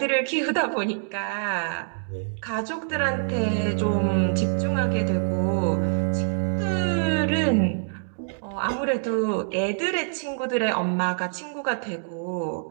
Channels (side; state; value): left; silent; digital silence